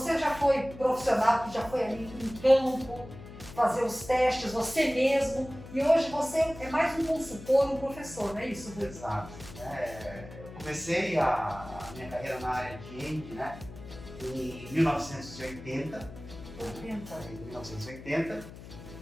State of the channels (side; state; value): left; noise; hum, 15 dB below the sound